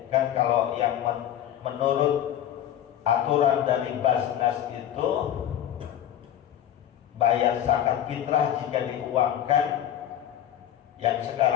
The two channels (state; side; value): quieter; right; 10.9 dB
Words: kan. Kalau yang menurut aturan dari Basnas itu bayar zakat fitrah jika diuangkan yang